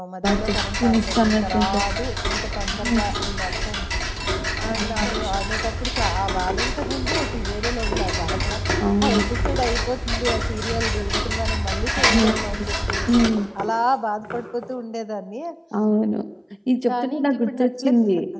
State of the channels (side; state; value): both; identical; correlation 1.00